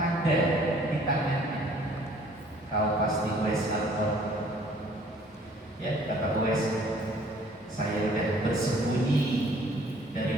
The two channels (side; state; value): both; normal; correlation 0.57